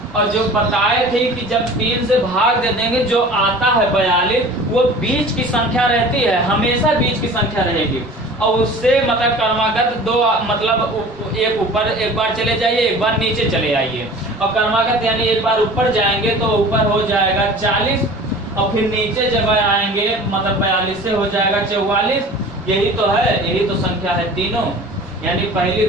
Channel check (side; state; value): both; normal; correlation 0.42